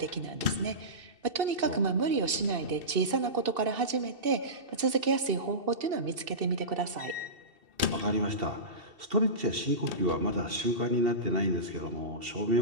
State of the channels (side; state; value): left; late; 2.7 ms